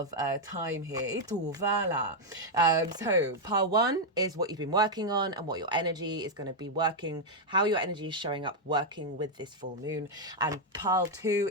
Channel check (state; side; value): normal; both; correlation -0.01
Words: time here. So pile 1 is what you've been working on and what your energy is going to be working, how your energy is showing up working with this full moon. And pile